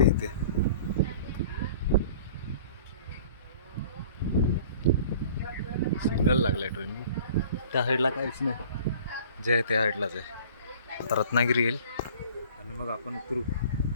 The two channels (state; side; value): inverted; both; correlation -0.47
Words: इथे. सिग्नल लागलाय ट्रेन. त्या साईडला काहीच नाही. जे आहे त्या साईडलाच आहे. आता रत्नागिरी येईल आणि मग आपण उतरू